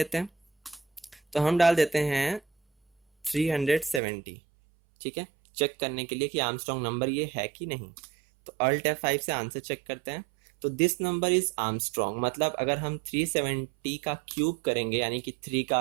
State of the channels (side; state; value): left; drops out; at 4.0 s